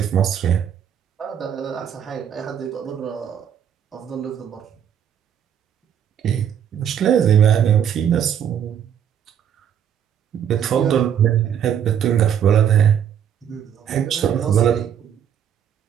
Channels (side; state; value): left; quieter; 8.9 dB